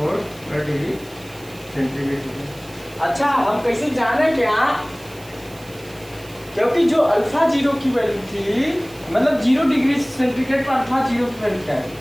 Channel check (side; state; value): right; noise; hiss, 22 dB below the sound